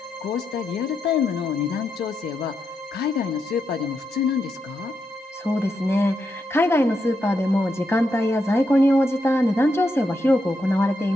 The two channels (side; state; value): both; normal; correlation 0.83